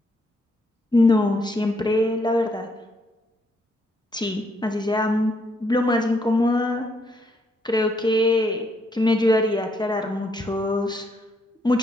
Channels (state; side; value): normal; both; correlation 0.74